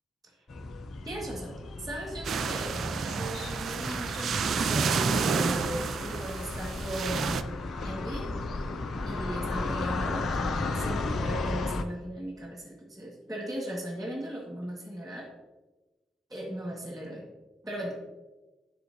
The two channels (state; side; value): normal; both; correlation 0.78